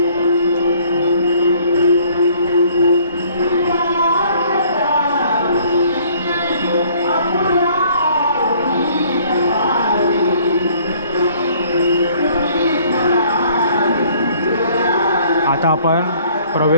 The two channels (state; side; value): inverted; both; correlation -0.59